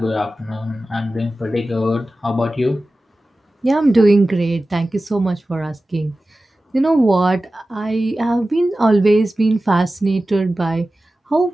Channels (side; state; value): both; normal; correlation 0.95